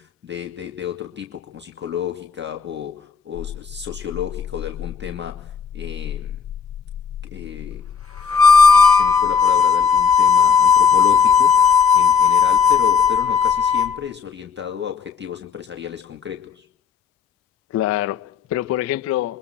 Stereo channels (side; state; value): right; quieter; 6.3 dB